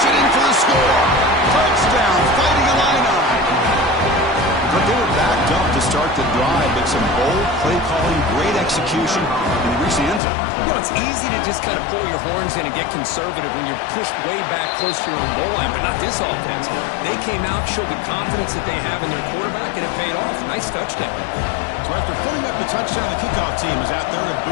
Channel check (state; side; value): drops out; right; at 10.2 s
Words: it in for the score. Touchdown, Fighting Illini. But they were backed up to start the drive, but some bold play calling, great execution, and they reached the end zone. You know, it's easy to just kind of pull your horns in and get conservative when you're pushed way back close to your own goal line, but not this offense. They came out, showed the confidence that they have in their quarterback, and it paid off. Nice touchdown. So after putting up the touchdown, the kickoff team is out there to